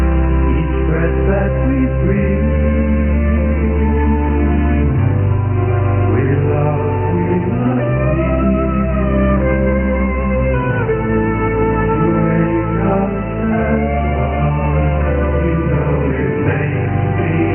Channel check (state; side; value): identical; both; correlation 1.00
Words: Each breath that we breathe.